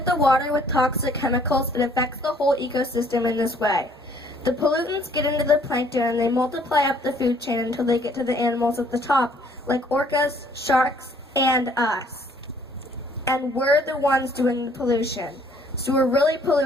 the water with toxic chemicals, it affects the whole ecosystem in this way. The pollutants get into the plankton and they multiply up the food chain until they get to the animals at the top, like orcas, sharks, and us. And we're the ones doing the pollution. So we're really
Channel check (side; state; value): both; normal; correlation 0.61